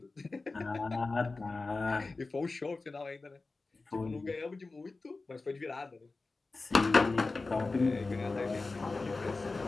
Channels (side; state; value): right; quieter; 3.6 dB